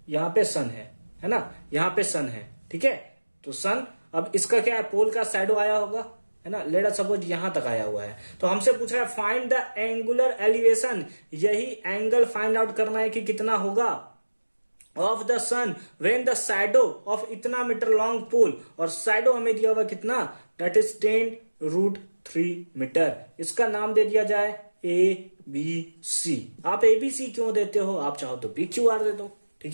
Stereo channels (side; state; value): both; inverted; correlation -1.00